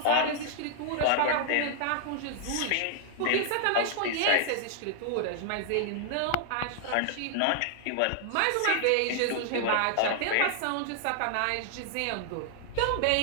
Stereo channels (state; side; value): different; both; correlation -0.01